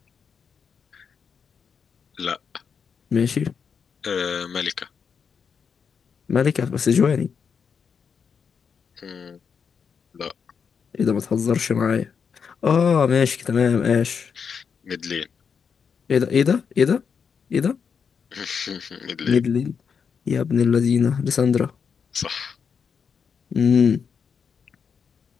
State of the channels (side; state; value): right; quieter; 6.4 dB